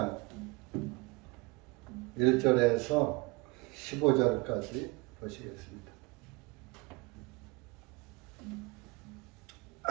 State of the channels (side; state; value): left; quieter; 26.6 dB